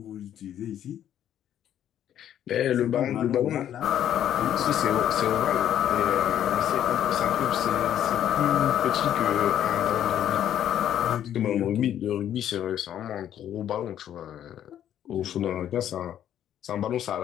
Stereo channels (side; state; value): right; quieter; 10.6 dB